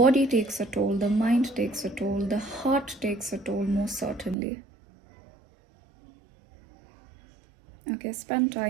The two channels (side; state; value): left; drops out; at 4.4 s